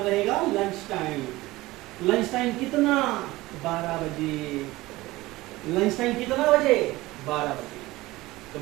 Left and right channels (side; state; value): left; quieter; 19.1 dB